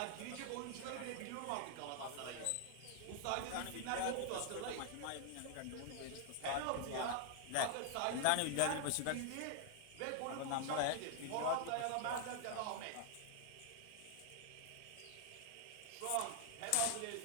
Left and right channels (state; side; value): different; both; correlation 0.00